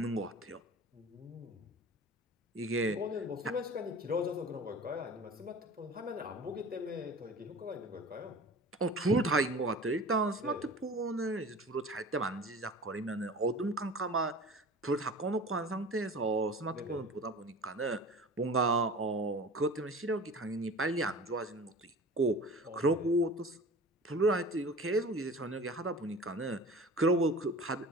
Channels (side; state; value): both; normal; correlation 0.39